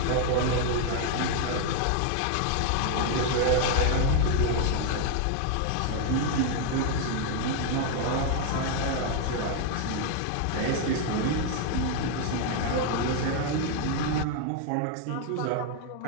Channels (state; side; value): different; both; correlation 0.00